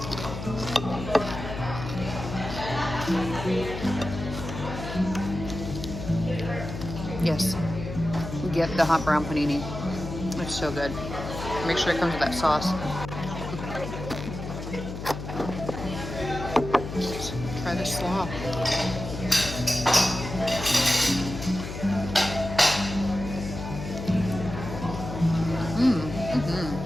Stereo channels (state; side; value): noise; left; hum, 8 dB below the sound